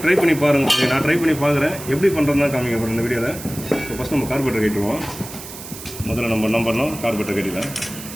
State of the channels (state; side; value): noise; right; hiss, 13 dB below the sound